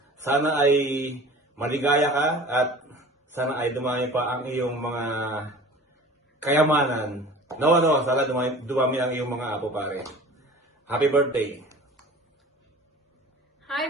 Sana ay maligaya ka at sana ay dumami pa ang iyong mga kayamanan. Sana dumami ang iyong mga apo pare. Happy birthday. Hi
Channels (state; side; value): normal; both; correlation 0.42